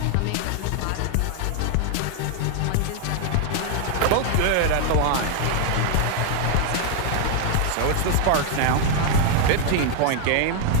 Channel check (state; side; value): different; both; correlation 0.00